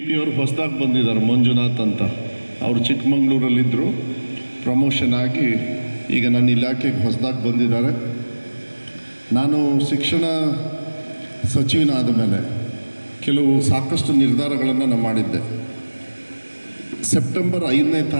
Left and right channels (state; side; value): inverted; both; correlation -1.00